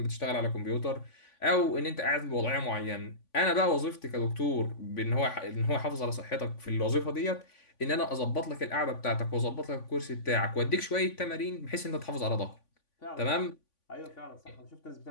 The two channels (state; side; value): late; right; 3.5 ms